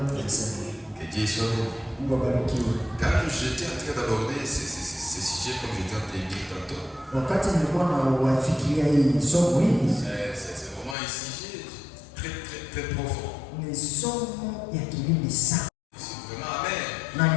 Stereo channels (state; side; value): drops out; right; at 11.0 s